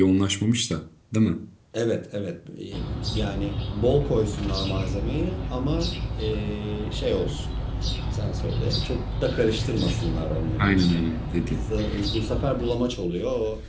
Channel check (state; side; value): identical; both; correlation 1.00